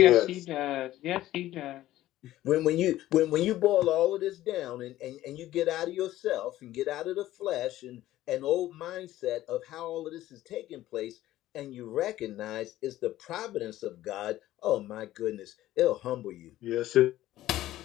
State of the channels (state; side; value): quieter; right; 14.7 dB